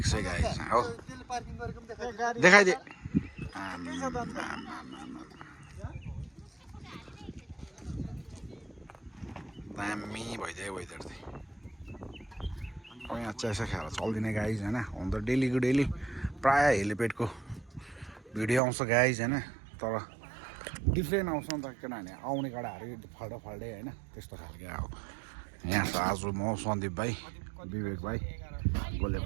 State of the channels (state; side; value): drops out; left; at 18.6 s